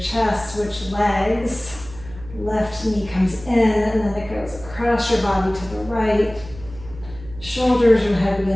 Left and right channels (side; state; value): right; noise; hum, 16 dB below the sound